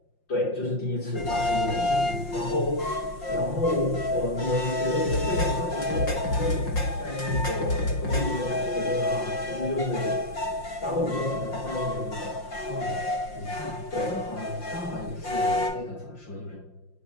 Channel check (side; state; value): right; late; 5.7 ms